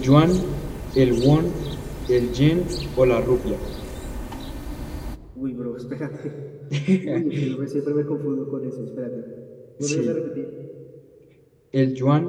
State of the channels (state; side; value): identical; both; correlation 1.00